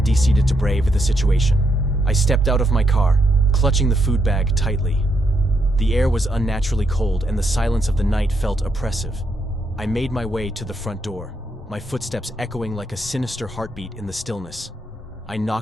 decided to brave the situation. I stepped out of my car, clutching the food bag tightly. The air was unnaturally cold, and the silence of the night felt oppressive. I made my way to the front door, my footsteps echoing like a sinister heartbeat in the stillness. I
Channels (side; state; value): both; normal; correlation 0.78